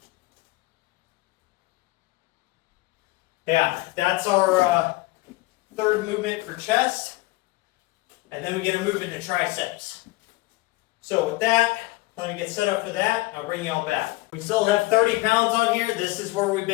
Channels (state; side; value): quieter; right; 20.6 dB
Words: yeah, that's our third movement for chest, and then we get to move into triceps. So with that, let me get set up for that. I'll bring you all back. We still have 30 pounds on here. This is where we've